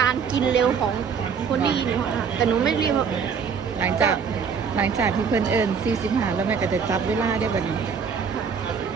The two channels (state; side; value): quieter; left; 6.3 dB